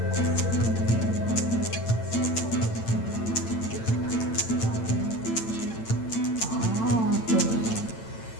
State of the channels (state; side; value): late; right; 8.9 ms